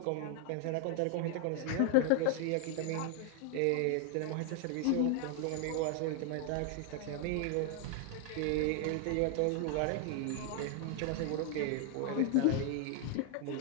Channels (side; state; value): both; different; correlation 0.00